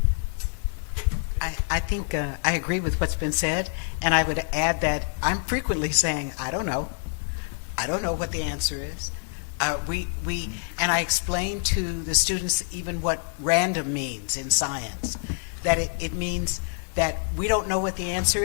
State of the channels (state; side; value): silent; right; digital silence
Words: I think I agree with what's been said, and I would add that I'm frequently saying, I don't know what the answer is. And I explain to the students even what random means in science, that it means that we don't know what the answer